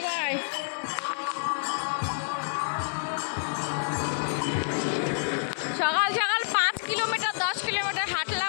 সকাল সকাল 5 কিলোমিটার 10 কিলোমিটার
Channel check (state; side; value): silent; right; digital silence